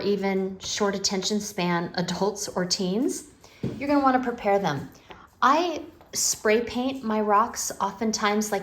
short attention span adults or teens, you're going to want to prepare them. I spray paint my rocks oftentimes,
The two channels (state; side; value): identical; both; correlation 1.00